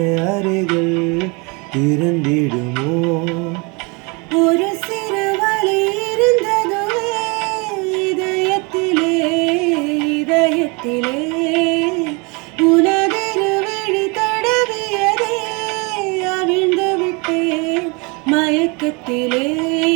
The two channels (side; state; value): left; quieter; 29.7 dB